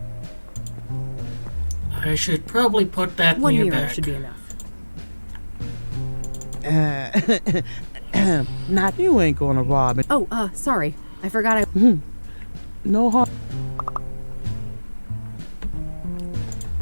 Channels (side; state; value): both; inverted; correlation -1.00